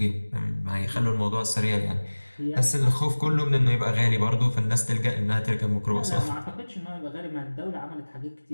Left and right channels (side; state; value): both; inverted; correlation -1.00